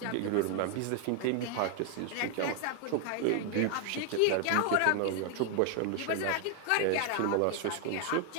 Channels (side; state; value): both; different; correlation 0.00